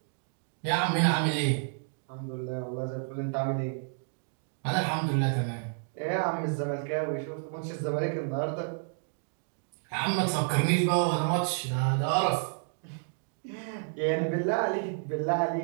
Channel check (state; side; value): silent; left; 55 dB below the other